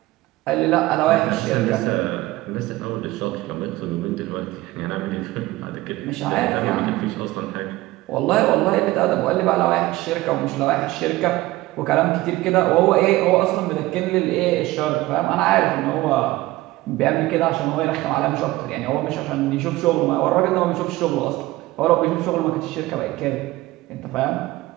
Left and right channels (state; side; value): quieter; left; 18.3 dB